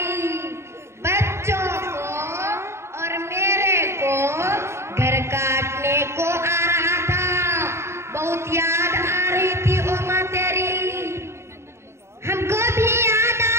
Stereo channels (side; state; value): left; late; 0.13 ms